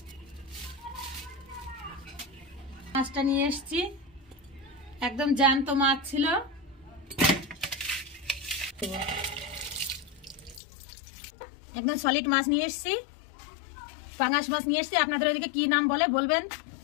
মাছটা নিয়ে এসেছি একদম জ্যান্ত মাছ ছিল। একদম সলিড মাছ নিয়ে এসেছি, পাঙ্গাস মাছ নিয়ে এসেছি। আপনাদের ওইদিকে কি নাম বলে বলবেন।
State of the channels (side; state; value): right; drops out; at 10.6 s